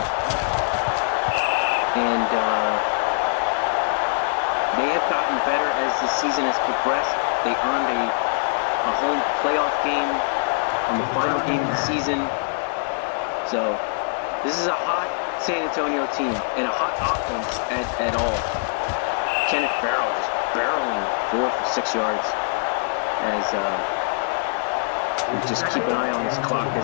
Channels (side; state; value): right; silent; digital silence